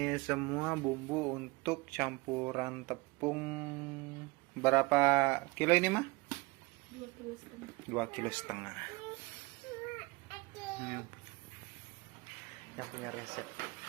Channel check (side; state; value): left; quieter; 24.6 dB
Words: semua bumbu untuk campuran tepung. Berapa kilo ini mah? 2,5 kilo. Yang punya resep.